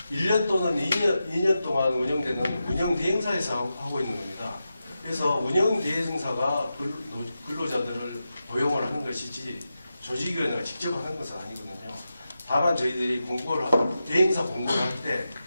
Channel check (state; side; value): inverted; both; correlation -0.90